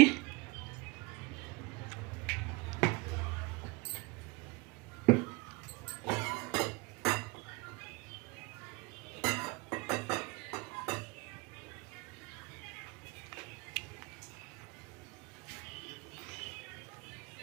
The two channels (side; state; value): left; quieter; 24.7 dB